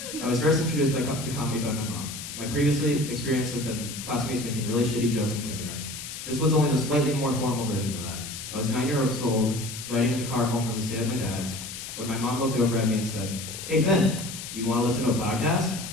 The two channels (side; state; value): left; noise; hiss, 9 dB below the sound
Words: I was first introduced to comedy by my mom. My previous experience had been classmates making really shitty jokes in kindergarten. This was only the slightly more formal version of that. I was 9 years old, riding in the car home from the stay at my dad's, when my mom looked over at me and said, "Hey Finn, do you want to listen to a podcast?"